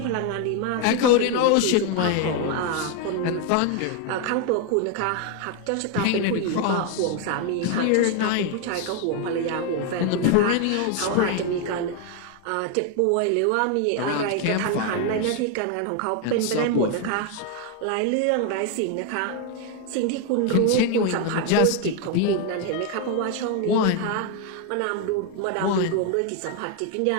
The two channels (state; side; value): different; both; correlation 0.01